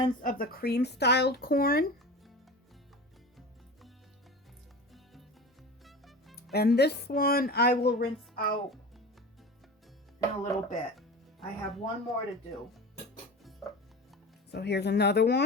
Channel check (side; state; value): both; normal; correlation 0.32